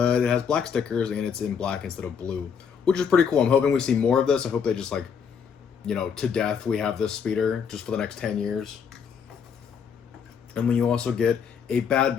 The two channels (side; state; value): right; quieter; 6.9 dB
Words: it has black stickers and it's in black instead of blue, which is pretty cool. I'm hoping we see more of this. I hope they just to death we have this speeder just for the next 10 years. And then you also get a Bad